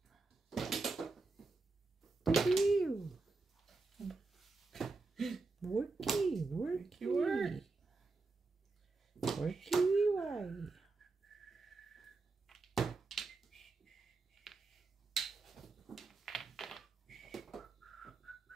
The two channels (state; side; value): quieter; left; 3.8 dB